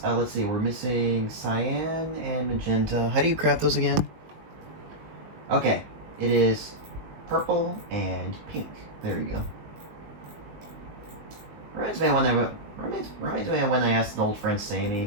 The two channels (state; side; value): late; left; 19 ms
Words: let's see, we're missing cyan and magenta. How do you craft those again? Okay, it is purple and pink. There you go. Reminds me of when I asked an old friend